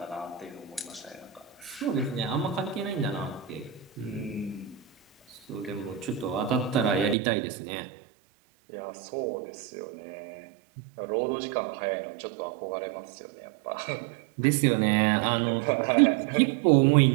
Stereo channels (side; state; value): left; drops out; at 7.2 s